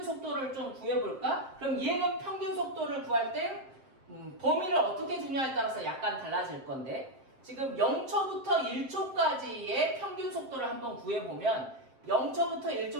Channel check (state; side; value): late; left; 7.6 ms